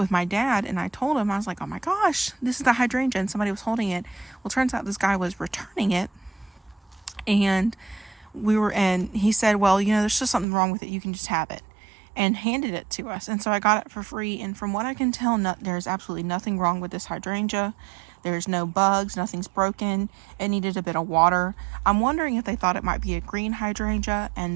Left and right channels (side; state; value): left; drops out; at 10.5 s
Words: my dad, and I told him, I was like, oh my gosh, this is the hydrangea, and somebody was holding it. Well, turns out this guy was returning it, and he said, well, there's just something wrong with it, you can just have it, and handed it to us. And so I got it for free, and from what I can tell, there's absolutely nothing wrong with this hydrangea. There's no bugs, nothing's broken. It needed a bit of water. I'm wondering if they thought it might be a green hydrangea,